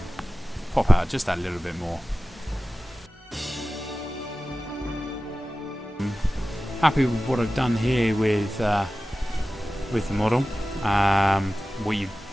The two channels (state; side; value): normal; both; correlation 0.96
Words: pop out just that little bit more. Happy with what I've done here with the model. What you